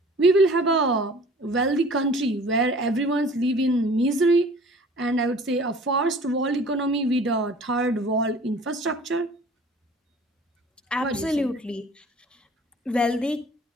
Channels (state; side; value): normal; both; correlation 0.48